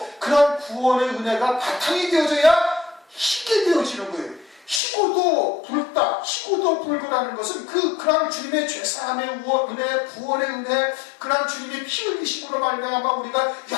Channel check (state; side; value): drops out; right; at 4.8 s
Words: 그러한 구원의 은혜가 바탕이 되어져야 희게 되어지는 거예요. 희고도 붉다, 희고도 붉으라는 것은 그러한 주님의 죄사함의 은혜, 구원의 은혜, 그러한 주님의 피 흘리심으로 말미암아 우리가